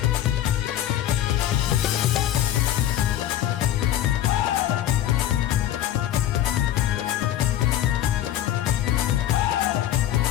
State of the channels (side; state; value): right; quieter; 12.0 dB